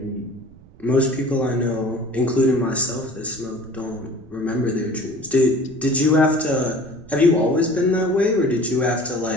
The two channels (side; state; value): right; noise; rumble, 23 dB below the sound